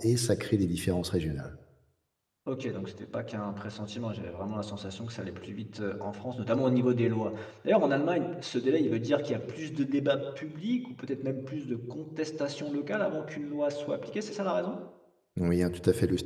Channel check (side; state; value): both; identical; correlation 1.00